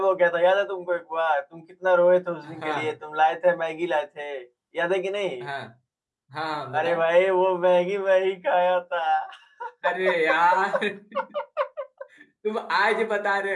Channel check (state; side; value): identical; both; correlation 1.00